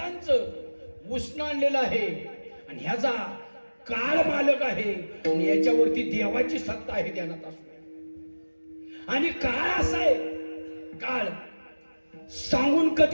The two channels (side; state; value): both; inverted; correlation -1.00